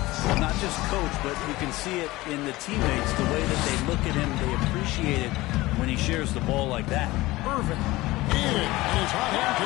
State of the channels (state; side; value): quieter; right; 19.3 dB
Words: Well, not just coach, but you can see it in the teammates, the way that they look at him. They appreciate it when he shares the ball like that. Irving in, and his hot hand